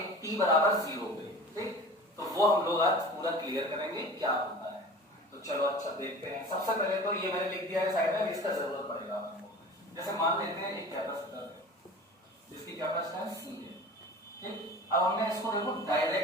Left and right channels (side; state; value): both; normal; correlation 0.39